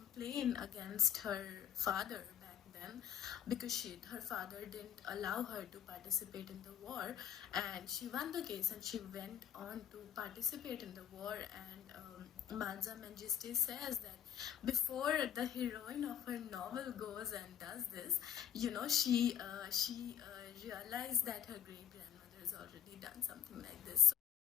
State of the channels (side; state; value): right; quieter; 9.4 dB